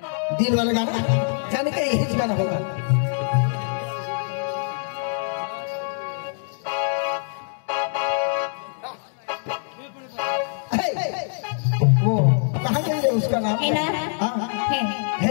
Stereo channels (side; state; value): right; silent; digital silence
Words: दिल वाला गाना जाने का यही गाना होगा. वो कहाँ गई उसका नाम है ना? है